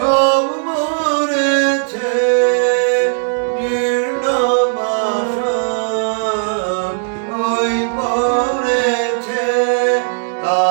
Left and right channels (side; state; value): left; silent; digital silence